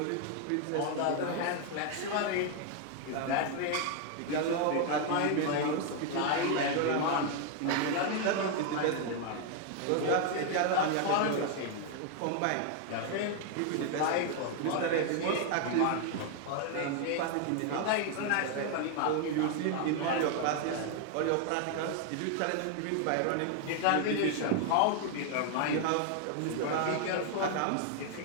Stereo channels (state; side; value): different; both; correlation 0.00